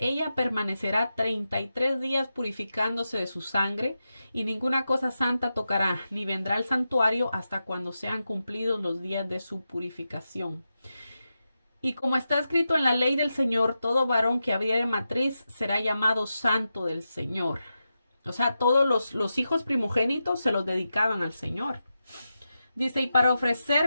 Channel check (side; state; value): both; inverted; correlation -0.90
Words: permanecerá 33 días purificándose de su sangre y ninguna cosa santa tocará, ni vendrá al santuario hasta cuando sean cumplidos los días de su purificación. Y como está escrito en la ley del Señor, todo varón que abriere matriz será llamado santo del Señor. O sea, todos los hijos primogénitos se los dedicaban al Señor. Dice, y para